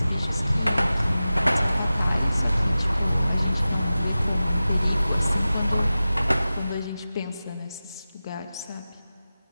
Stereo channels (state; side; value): inverted; both; correlation -0.95